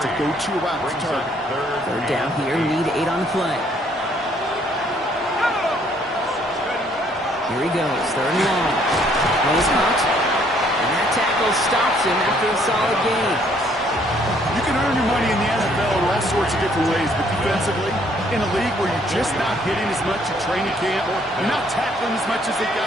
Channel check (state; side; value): normal; both; correlation 0.65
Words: a go-to route to target. 3rd down here, need 8 on the play. Here he goes, 3rd and long. Goes caught, and that tackle stops him after a solid gain. You can earn your money in the NFL in all sorts of different ways, but defensively, in a league where you're just not hitting as much at training camp, you're not tackling as much as they